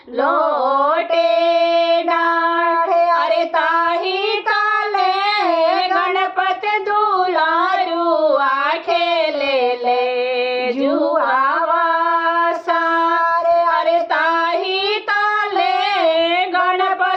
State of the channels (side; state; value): both; identical; correlation 1.00